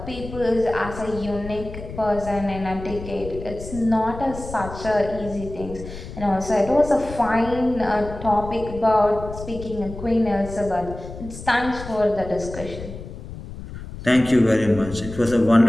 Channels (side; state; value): left; noise; rumble, 12 dB below the sound